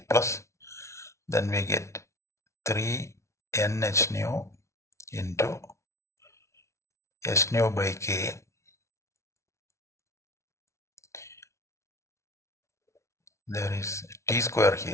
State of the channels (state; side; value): late; right; 0.13 ms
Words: plus. Then we get 3 nh nu into s nu by k. There is t square